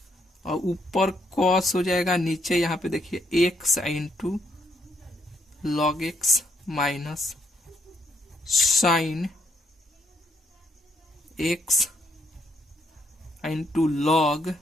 और ऊपर cos हो जाएगा, नीचे यहाँ पे देखिए x into log x minus sine x into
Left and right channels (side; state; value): both; normal; correlation 0.73